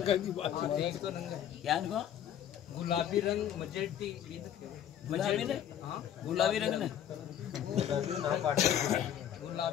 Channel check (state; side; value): quieter; right; 10.2 dB